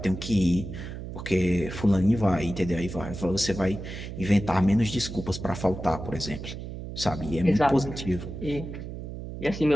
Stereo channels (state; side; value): noise; right; hum, 9 dB below the sound